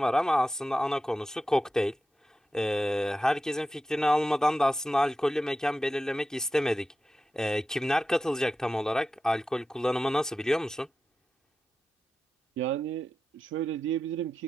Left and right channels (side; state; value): both; normal; correlation 0.92